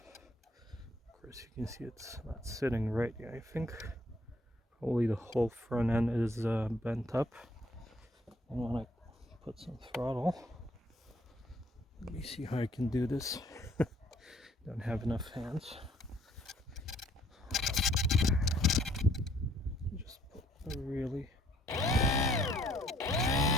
Of course, you can see it's not sitting right yet. I think probably the whole front end is bent up. I want to put some throttle. Let me see how I can do this. Don't have enough hands. Just put a really. You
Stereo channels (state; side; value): normal; both; correlation 0.63